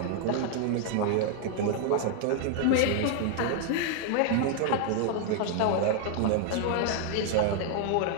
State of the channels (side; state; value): both; different; correlation 0.00